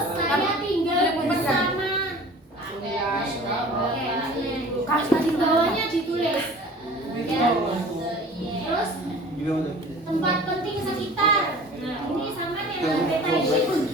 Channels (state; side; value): normal; both; correlation 0.44